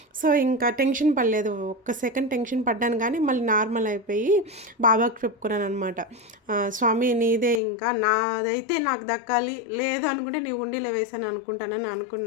సో ఇంకా టెన్షన్ పడలేదు, ఒక్క సెకండ్ టెన్షన్ పడ్డాను, కానీ మళ్ళీ నార్మల్ అయిపోయి బాబాకి చెప్పుకున్నాను అనమాట. స్వామి నీదే, ఇంకా నాదైతే నాకు దక్కాలి, లేదు అనుకుంటే నీ ఉండిలో వేసాను అనుకుంటానని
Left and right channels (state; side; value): drops out; right; at 7.6 s